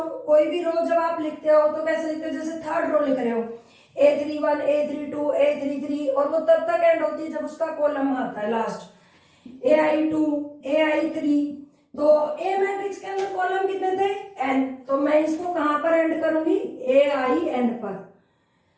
कोई भी रो जब आप लिखते हो तो कैसे लिखते हो, जैसे थर्ड रो लिख रहे हो, a31 a32 a33, और वो तब तक एंड होती है जब उसका कॉलम आता है लास्ट, ai2 ai3, तो ए मैट्रिक्स के अंदर कॉलम कितने थे, n, तो मैं इसको कहां पर एंड करूंगी, ain पर।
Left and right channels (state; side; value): identical; both; correlation 1.00